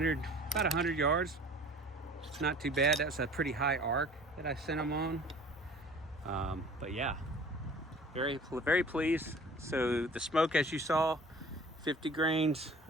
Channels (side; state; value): both; normal; correlation 0.47